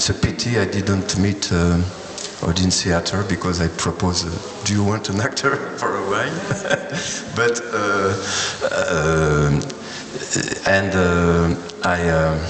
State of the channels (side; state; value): both; identical; correlation 1.00